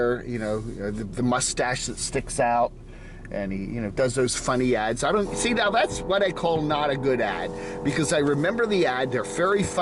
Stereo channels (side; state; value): both; identical; correlation 1.00